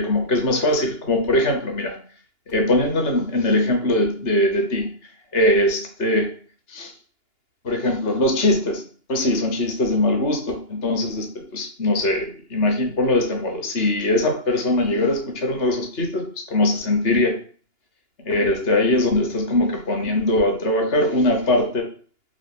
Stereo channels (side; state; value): right; late; 2.9 ms